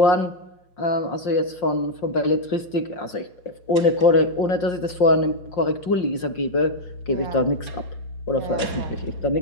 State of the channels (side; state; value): right; late; 5.6 ms